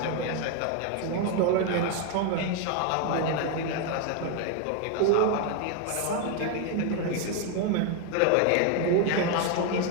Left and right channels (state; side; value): different; both; correlation 0.01